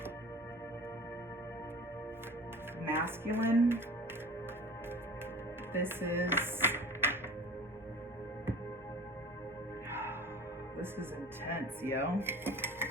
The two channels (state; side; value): normal; both; correlation 0.41